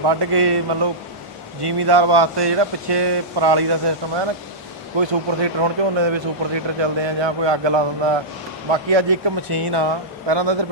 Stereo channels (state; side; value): normal; both; correlation -0.12